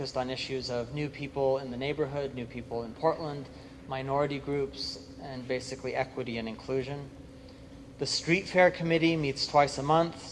on issues of new people in the neighborhood, new people in Portland, minority groups, and basically equity and inclusion. The Street Fair Committee meets twice a month,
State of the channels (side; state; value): both; identical; correlation 1.00